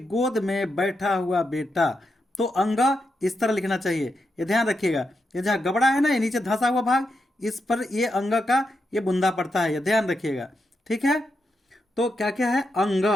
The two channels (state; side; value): normal; both; correlation 0.85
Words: गोद में बैठा हुआ बेटा। तो अंग इस तरह लिखना चाहिए, ये ध्यान रखिएगा। ये जहाँ गबड़ा है ना, ये नीचे धंसा हुआ भाग, इस पर ये अंग का ये बुंदा पड़ता है, ये ध्यान रखिएगा। ठीक है, तो क्या क्या है अंग,